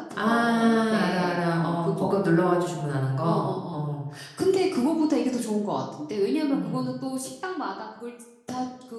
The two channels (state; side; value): identical; both; correlation 1.00